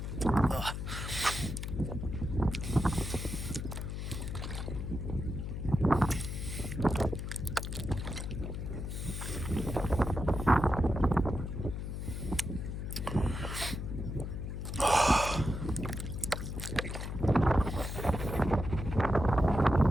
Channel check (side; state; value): left; noise; hum, 5 dB below the sound